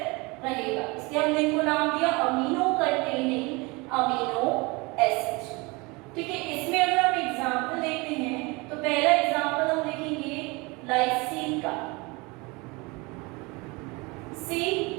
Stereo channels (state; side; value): quieter; left; 26.0 dB